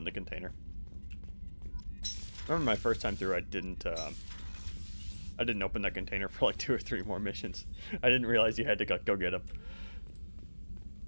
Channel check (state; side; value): inverted; both; correlation -1.00